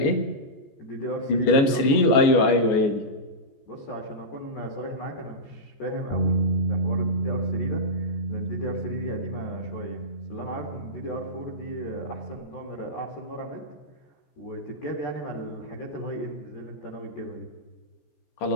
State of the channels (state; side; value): late; right; 14 ms